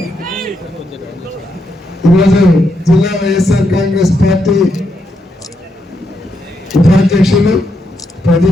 ఈరోజు జిల్లా వైఎస్ఆర్ కాంగ్రెస్ పార్టీ ఉపాధ్యక్షులు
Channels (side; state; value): both; normal; correlation 0.80